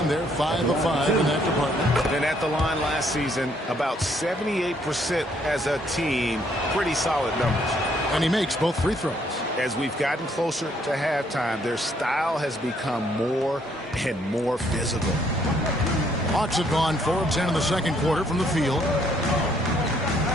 They're 5 of 5 in that department. And at the line last season, about 78% as a team. Pretty solid numbers. And he makes both free throws. As we've gotten closer to halftime, their style has become more and more physical. Hawks have gone 4 of 10 in the second quarter from the field.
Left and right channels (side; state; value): both; normal; correlation 0.68